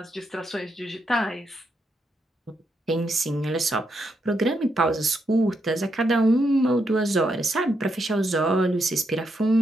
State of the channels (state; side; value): normal; both; correlation 0.81